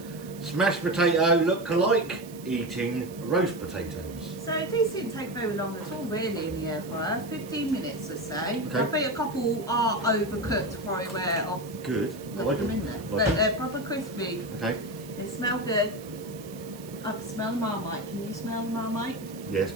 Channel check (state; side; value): noise; right; hiss, 19 dB below the sound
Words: Smashed potato look alike, eating roast potatoes. So these didn't take very long at all really in the air fryer, 15 minutes or so. Okay. I think a couple are overcooked for aware of. Good. I Look like them them. in there. Like But them. they're proper crispy. Okay. They smell good. I can smell the Marmite. Can you smell the Marmite? Yeah,